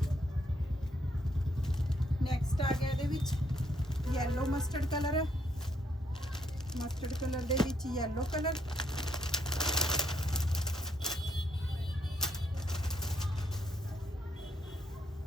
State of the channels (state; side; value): normal; both; correlation 0.74